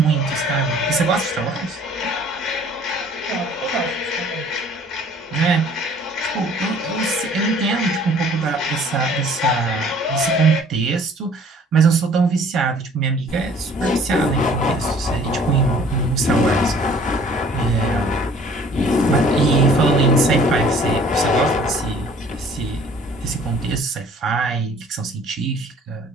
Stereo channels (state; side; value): normal; both; correlation 0.54